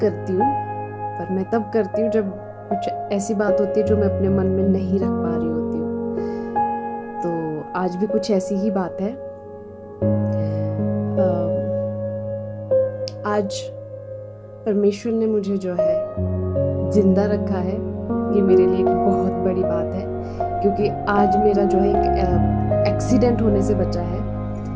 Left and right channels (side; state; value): both; identical; correlation 1.00